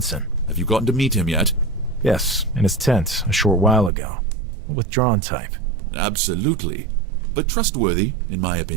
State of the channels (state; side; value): drops out; left; at 3.9 s